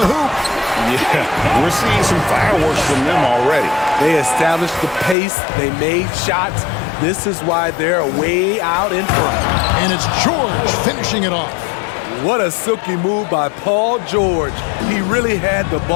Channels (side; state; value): right; drops out; at 5.2 s